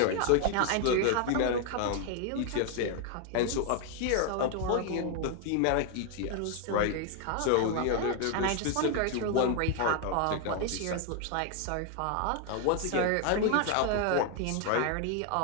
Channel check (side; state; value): both; different; correlation 0.01